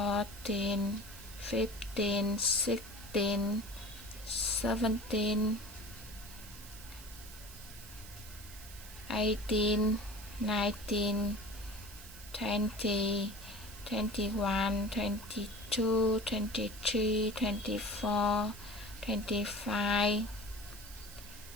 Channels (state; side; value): noise; right; hiss, 16 dB below the sound